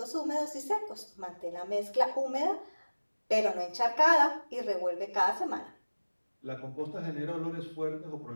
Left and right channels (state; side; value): inverted; both; correlation -1.00